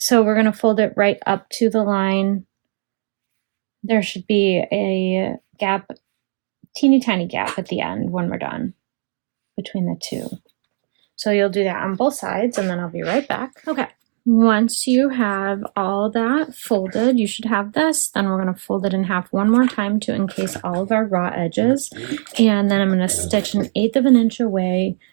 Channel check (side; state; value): left; silent; digital silence